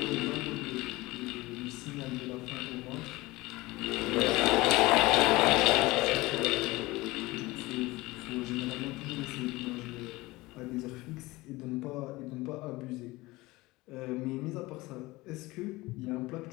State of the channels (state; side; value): quieter; right; 20.7 dB